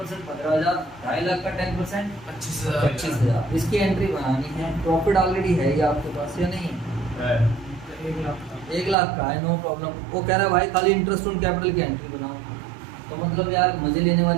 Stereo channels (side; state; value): left; drops out; at 9.0 s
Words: 15,000, 2.5 लाख का 10% 25,000। 25,000। इसकी एंट्री बनानी है, प्रॉफिट ऑलरेडी है ये आपके पास या नहीं है? 1 लाख का है, नो प्रॉब्लम। वो कह रहा है भाई खाली इंटरेस्ट ऑन कैपिटल की एंट्री बनाओ, तो मतलब यार मजे लेने